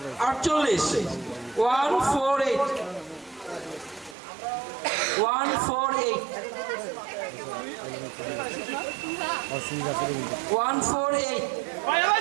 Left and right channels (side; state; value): left; drops out; at 4.2 s